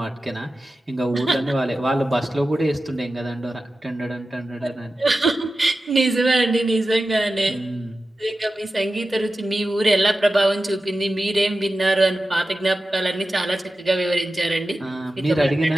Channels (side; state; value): both; normal; correlation 0.93